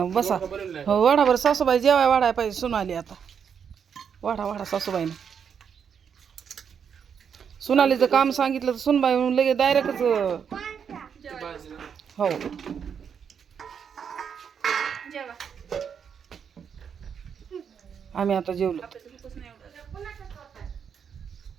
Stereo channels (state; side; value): quieter; left; 7.3 dB